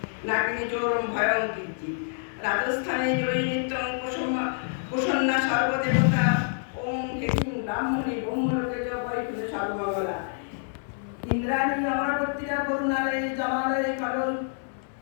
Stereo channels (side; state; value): right; silent; 60 dB below the other